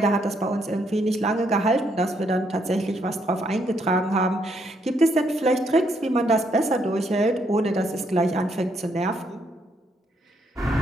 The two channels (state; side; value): normal; both; correlation 0.74